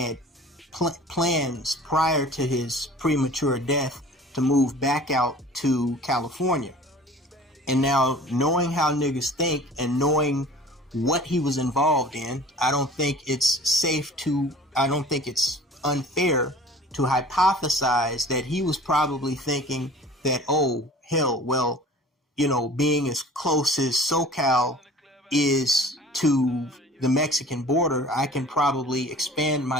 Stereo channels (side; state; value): both; normal; correlation 0.45